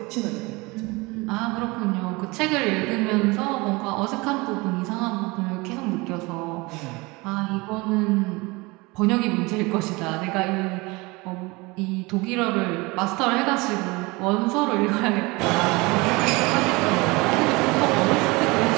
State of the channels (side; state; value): left; quieter; 24.5 dB